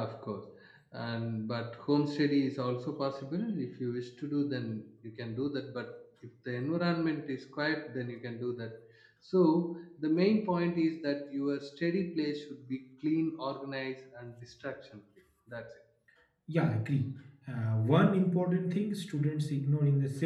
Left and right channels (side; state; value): both; identical; correlation 1.00